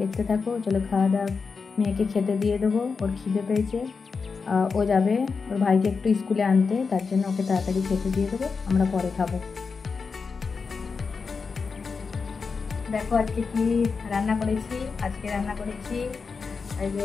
দেখতে থাকো। চলো খাওয়া দাওয়া, মেয়েকে খেতে দিয়ে দেবো, ওর খিদে পেয়েছে, ও যাবে ওর ভাইকে একটু স্কুলে আনতে, তার জন্য ওকে তাড়াতাড়ি খেতে দিয়ে দেবো, আমরা পরে খাবো। দেখো আজকে কি রান্না করেছি। আজকে রান্না করেছি এই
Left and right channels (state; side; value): quieter; right; 5.0 dB